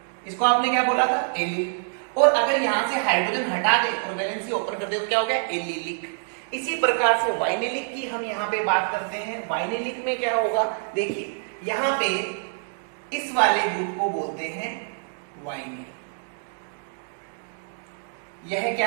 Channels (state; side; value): silent; left; digital silence